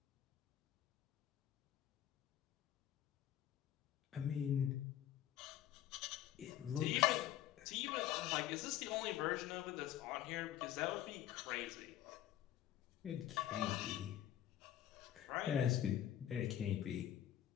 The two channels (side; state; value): right; quieter; 11.8 dB